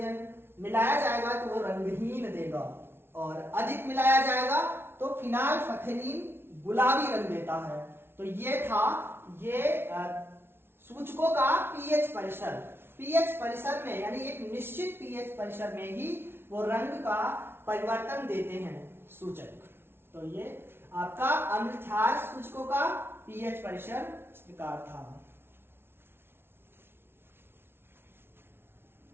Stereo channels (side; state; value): left; late; 0.11 ms